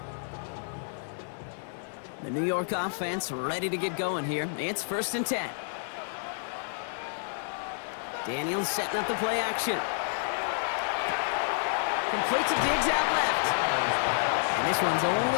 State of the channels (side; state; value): right; silent; 58 dB below the other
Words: The New York offense ready to get going here. It's 1st and 10. Daniels setting up the play action. Complete to Diggs out left. And this one's only